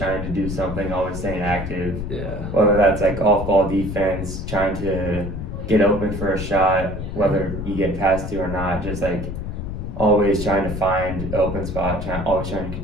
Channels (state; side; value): noise; left; rumble, 6 dB below the sound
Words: to do something, always staying active. Yeah. Whether that's like off-ball defense, trying to get open for a shot, whether you get past to or not, just like always trying to find an open spot, always trying to